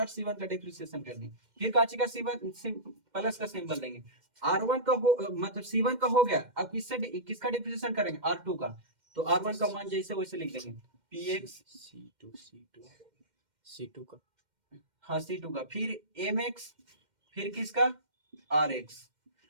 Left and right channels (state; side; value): late; left; 2.1 ms